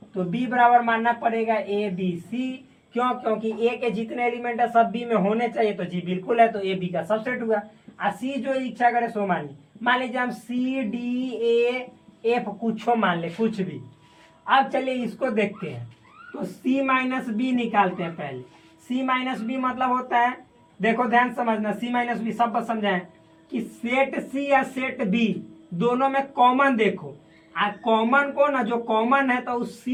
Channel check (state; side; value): identical; both; correlation 1.00